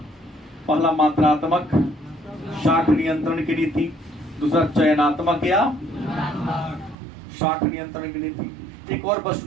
पहला मात्रात्मक शाख नियंत्रण की नीति, दूसरा चयनात्मक या शाख नियंत्रण की नीति। एक और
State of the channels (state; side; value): drops out; left; at 7.0 s